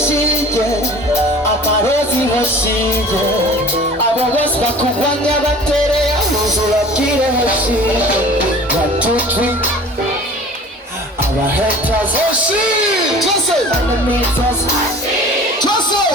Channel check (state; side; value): normal; both; correlation 0.44